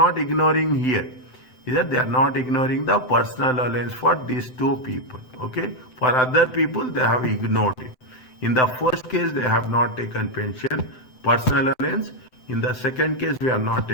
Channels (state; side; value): late; right; 7.9 ms